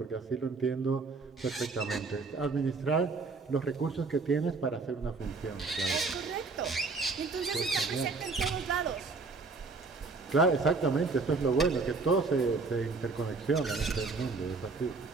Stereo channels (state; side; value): quieter; left; 4.1 dB